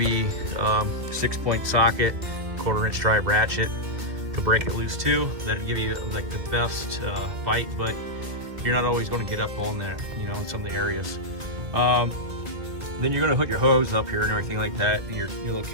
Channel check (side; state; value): left; late; 2.2 ms